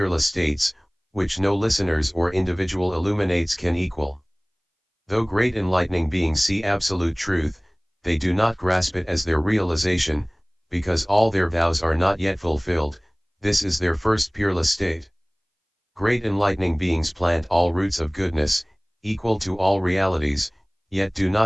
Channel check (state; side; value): identical; both; correlation 1.00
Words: states, which no listeners or individual illuminates can equal. Though great enlightening beings see absolute truth, they do not grasp it as their realization, because all their vows are not yet fulfilled. This is their first peerless state. Great enlightening beings plant all roots of goodness, equal to all realities, yet do